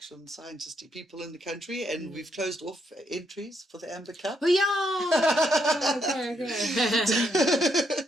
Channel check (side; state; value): both; normal; correlation 0.76